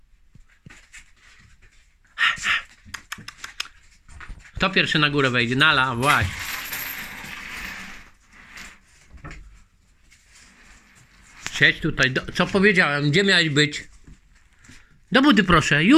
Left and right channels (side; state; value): both; identical; correlation 1.00